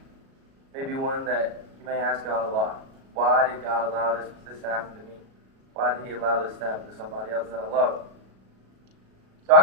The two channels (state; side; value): late; left; 37 ms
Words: Maybe one that you may ask God a lot. Why did God allow this to happen to me? Why did He allow this to happen to somebody else that I love? So